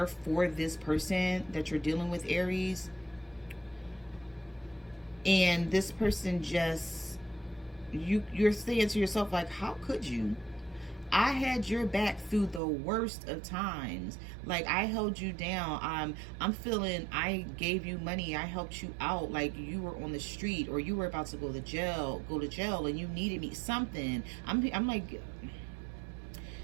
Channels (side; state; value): left; drops out; at 12.6 s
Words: for this person that you're dealing with, Aries. And this person just, you're saying to yourself, like, how could you? I had your back through the worst of times. Like, I held you down. I'm feeling I gave you money. I helped you out. Like, you were on the street, or you were about to go to jail, and you needed me something. I'm like,